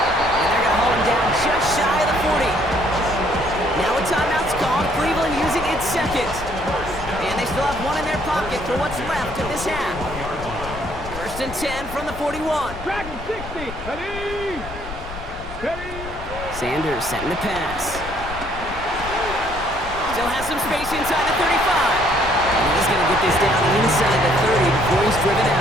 they're going to hold him down just shy of the 40. Now a timeout's called. Cleveland using its second. And they still have one in their pocket for what's left of this half. First and 10 from the 41. Dragon 60, ready, ready. Sanders setting the pass. Still has some space inside the 35. And he's going to get this down inside the 30 before he's driven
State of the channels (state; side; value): noise; left; rumble, 12 dB below the sound